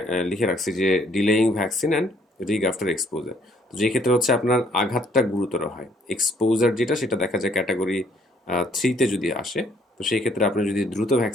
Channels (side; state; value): both; normal; correlation 0.65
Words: লিখে রাখছি যে delaying vaccine and rig after exposure. তো যে ক্ষেত্রে হচ্ছে আপনার আঘাতটা গুরুতর হয়, এক্সপোজার যেটা সেটা দেখা যায় ক্যাটাগরি 3-তে যদি আসে, তো সেই ক্ষেত্রে আপনি যদি দ্রুত